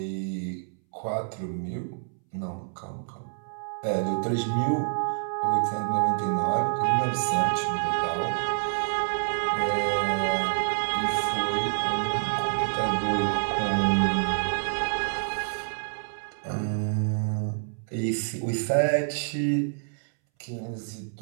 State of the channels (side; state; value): left; silent; 60 dB below the other